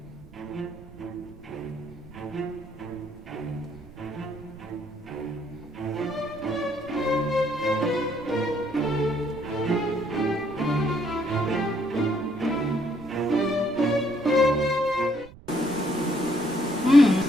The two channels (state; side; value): noise; right; rumble, 20 dB below the sound